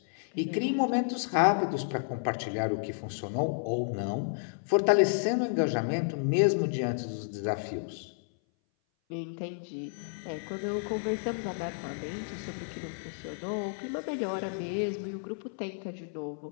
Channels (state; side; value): silent; right; 57 dB below the other